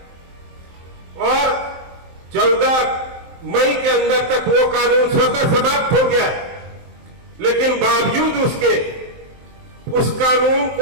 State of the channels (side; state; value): left; late; 23 ms